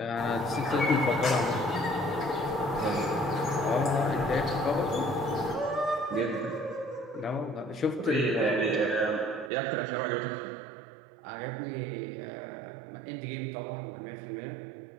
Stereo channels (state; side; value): drops out; left; at 9.5 s